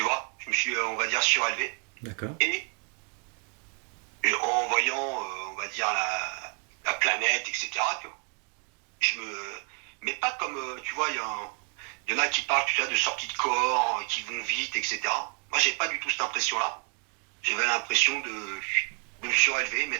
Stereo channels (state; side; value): quieter; left; 39.2 dB